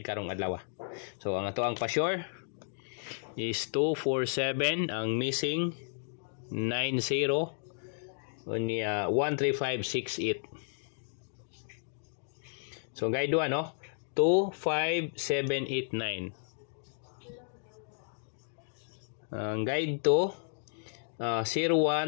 karong adlaw. So ang ato ang pa-sure is 247, ang missing 90, unya 13568. So guide 1, no? 25789. Ang guide 2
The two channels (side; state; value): right; silent; digital silence